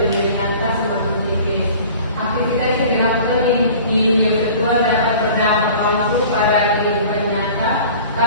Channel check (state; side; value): inverted; both; correlation -0.45